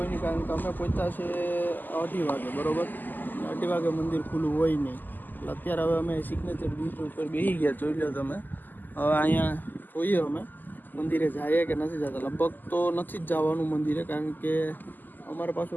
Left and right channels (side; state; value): right; late; 0.087 ms